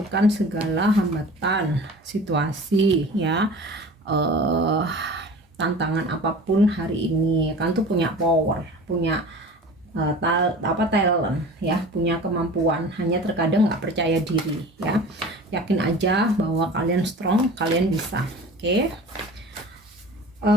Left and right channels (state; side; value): normal; both; correlation 0.40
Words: segala hambatan, situasi, ya, tantangan apapun hari ini. Kalian tuh punya power, punya talent, ya, punya kemampuan. Hanya terkadang nggak percaya diri, ya. Yakin aja bahwa kalian strong, kalian bisa. Oke.